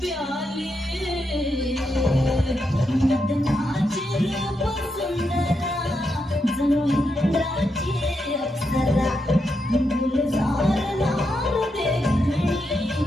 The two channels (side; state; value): both; normal; correlation 0.83